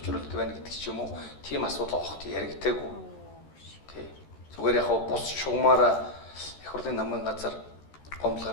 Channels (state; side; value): late; right; 13 ms